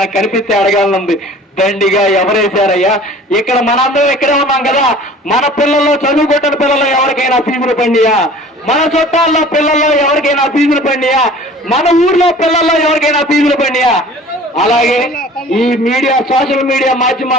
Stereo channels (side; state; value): both; normal; correlation 0.46